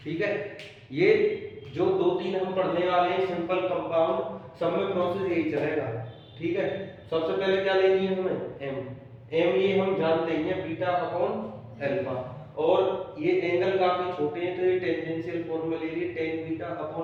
ठीक है, ये जो दो तीन हम पढ़ने वाले हैं सिंपल कंपाउंड, सब में प्रोसेस यही चलेगा। ठीक है, सबसे पहले क्या लेनी है हमें? m ये हम जानते हैं बीटा अपॉन एल्फा, और ये एंगल काफी छोटे हैं तो ये टेंजेंशियल फॉर्म में ले लिए tan beta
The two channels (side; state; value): both; identical; correlation 1.00